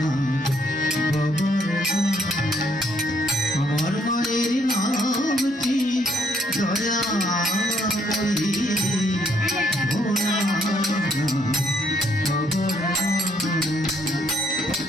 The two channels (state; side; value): normal; both; correlation 0.68